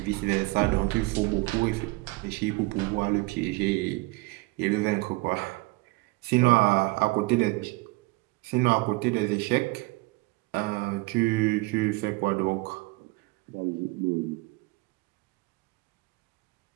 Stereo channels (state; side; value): quieter; left; 23.5 dB